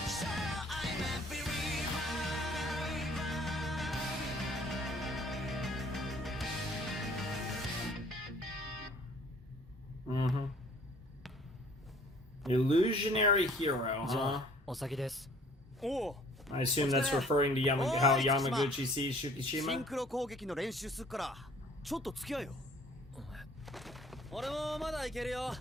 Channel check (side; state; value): both; normal; correlation 0.55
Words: Illusionary hero, huh? お先です。 I assume that's referring to how Yamaguchi sees Shukishima. シンクロ攻撃の練習すっからちょっと付き合えよ。俺もまだいけるよ。